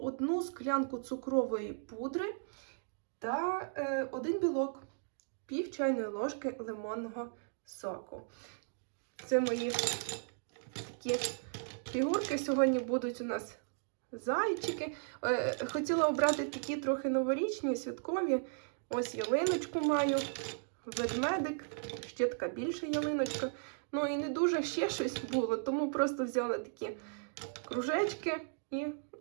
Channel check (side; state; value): left; silent; digital silence